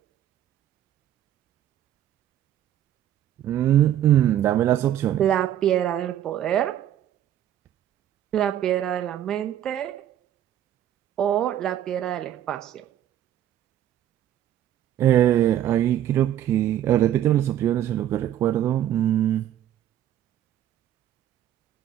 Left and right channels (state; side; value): quieter; left; 11.5 dB